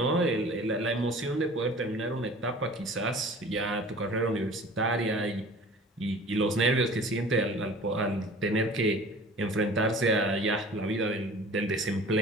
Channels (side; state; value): both; normal; correlation 0.44